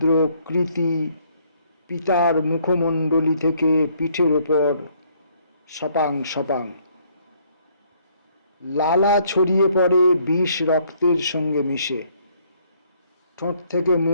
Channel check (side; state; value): both; inverted; correlation -0.65